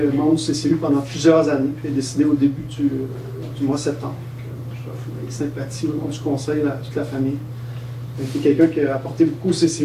membre du CCU pendant plusieurs années, puis est décédé au début du mois de septembre. Je offre mes sympathies au nom du conseil à toute la famille. C'était quelqu'un qui a apporté beaucoup au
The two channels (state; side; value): identical; both; correlation 1.00